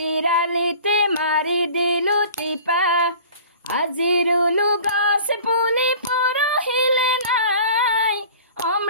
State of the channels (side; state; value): both; inverted; correlation -0.44